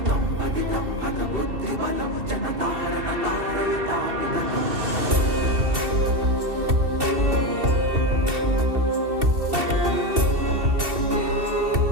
पतितं हत बुद्धिबलं जनतारण तारयतापित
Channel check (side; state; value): left; late; 2.7 ms